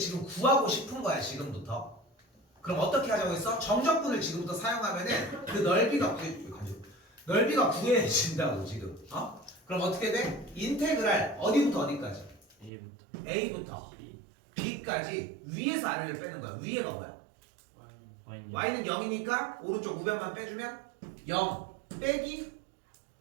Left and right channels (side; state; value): left; drops out; at 12.7 s